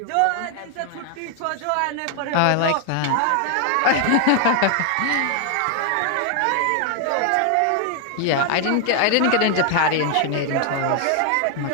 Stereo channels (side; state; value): both; different; correlation 0.00